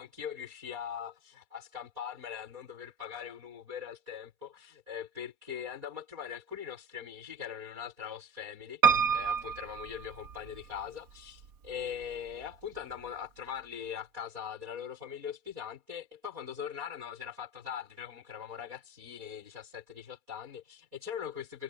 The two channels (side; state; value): left; late; 4.2 ms